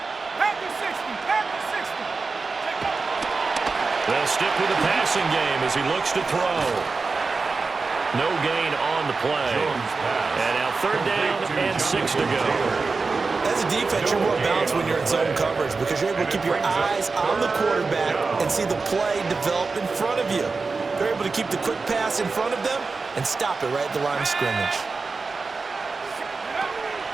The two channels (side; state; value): left; quieter; 4.2 dB